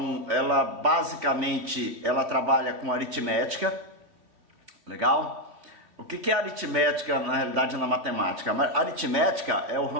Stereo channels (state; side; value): late; left; 2.9 ms